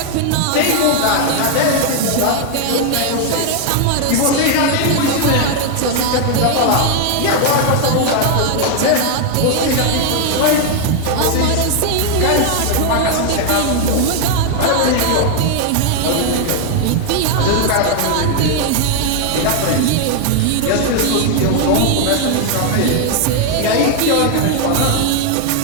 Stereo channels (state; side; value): different; both; correlation 0.00